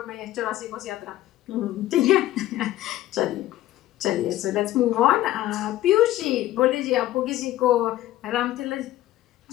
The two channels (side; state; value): right; quieter; 14.7 dB